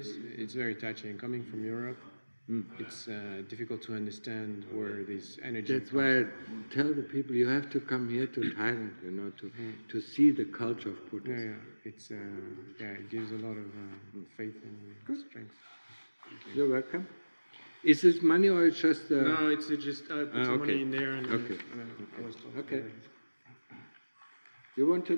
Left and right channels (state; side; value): inverted; both; correlation -1.00